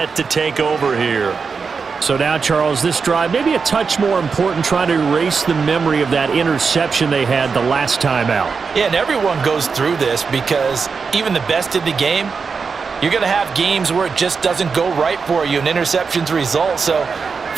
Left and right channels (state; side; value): quieter; left; 5.2 dB